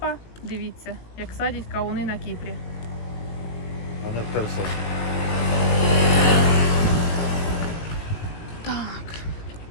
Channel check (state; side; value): late; right; 18 ms